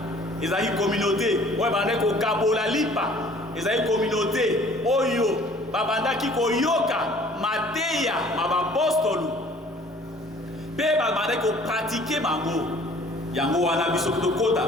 Ezali communauté oyo bande ko kabola lipa. Ezali communauté oyo babandaki koyoka mateya mabapostolu pe babandaki ko pratiquer mango. Yango wana biso tokota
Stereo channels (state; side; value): normal; both; correlation 0.53